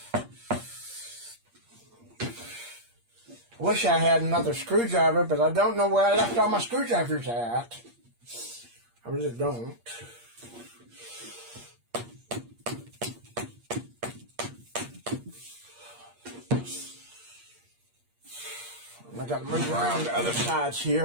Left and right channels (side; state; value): left; late; 8.5 ms